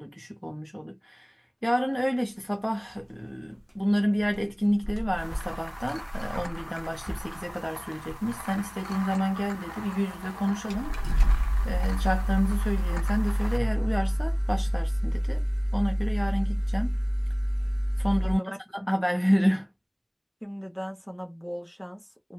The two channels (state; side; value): identical; both; correlation 1.00